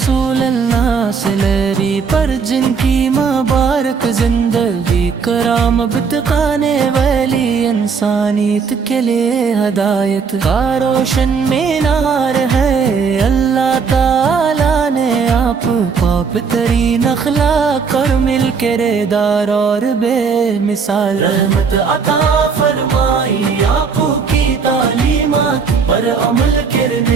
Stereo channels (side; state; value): left; quieter; 5.6 dB